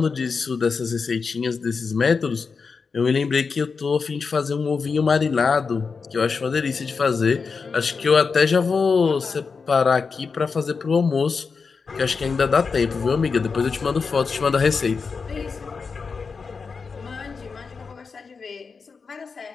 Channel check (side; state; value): right; quieter; 5.1 dB